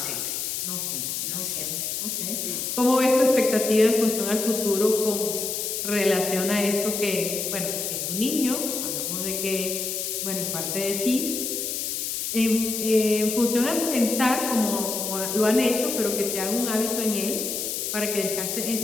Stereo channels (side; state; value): left; noise; hiss, 2 dB below the sound